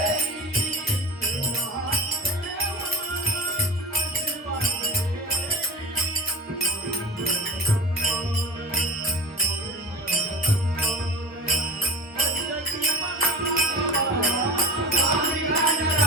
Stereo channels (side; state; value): both; normal; correlation 0.32